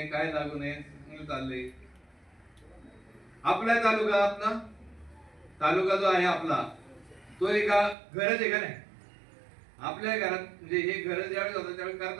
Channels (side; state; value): left; drops out; at 8.0 s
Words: काय लागू नये, चाललंय. आपला तालुका जो आहे आपला, तो एका घरच आहे का नाही? आपल्या घरात म्हणजे हे घर ज्यावेळेस होतं त्यावेळेस